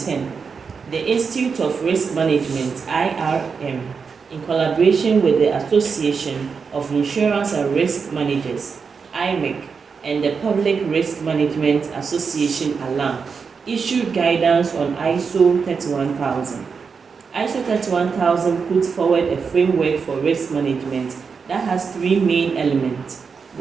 the Institute of Risk Management, IRM, in collaboration with the Association of Insurance and Risk Managers, IMIC, and the Public Risk Management Association, ALAM, issued guidance on ISO 31000. ISO 31000 puts forward a framework for risk management that has 3 main elements.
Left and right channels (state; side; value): quieter; left; 5.6 dB